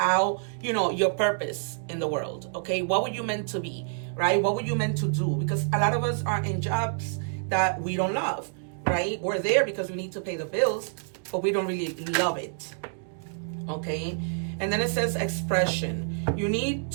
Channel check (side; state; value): left; silent; digital silence